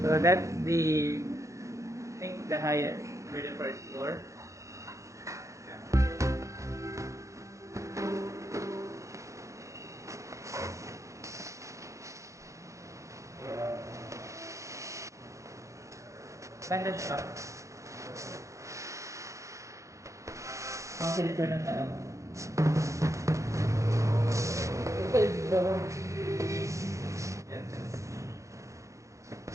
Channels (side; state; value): left; late; 0.15 ms